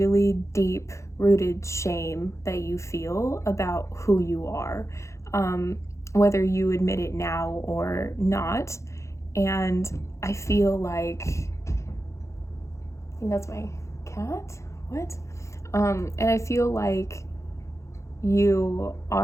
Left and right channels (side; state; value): right; late; 0.14 ms